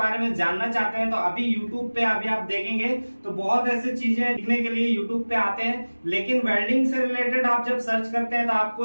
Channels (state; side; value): inverted; both; correlation -1.00